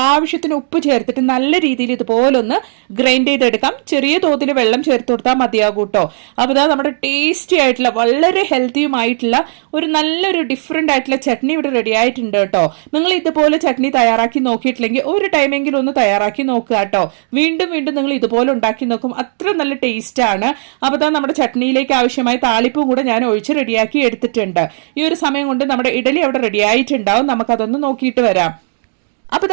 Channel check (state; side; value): silent; left; digital silence